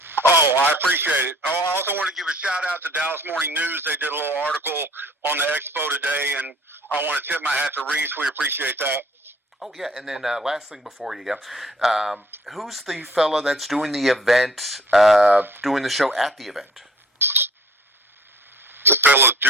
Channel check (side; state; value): both; normal; correlation 0.54